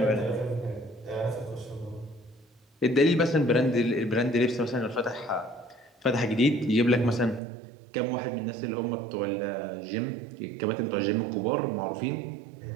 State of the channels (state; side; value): drops out; left; at 7.4 s